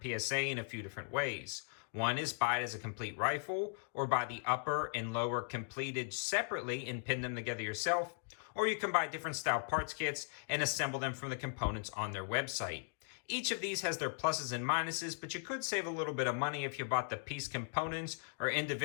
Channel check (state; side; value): silent; right; digital silence